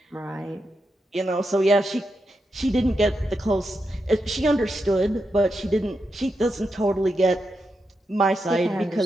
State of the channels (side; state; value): both; normal; correlation 0.86